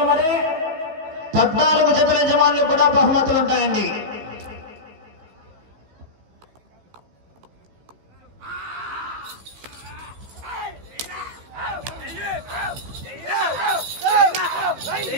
మరి 14 జతల యజమానులు కూడా బహుమతులు ఉంటాయండి.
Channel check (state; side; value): late; left; 15 ms